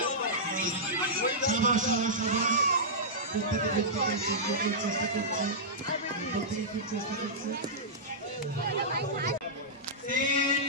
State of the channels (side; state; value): both; normal; correlation -0.13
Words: সাবাস সাবাস সাবাস, প্রত্যেকে চেষ্টা করছে, প্রত্যেকে খুব চেষ্টা করছে।